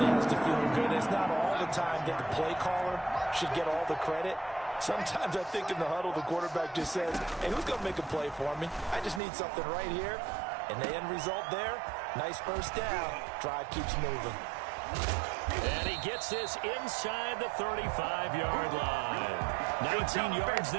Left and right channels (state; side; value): drops out; left; at 9.2 s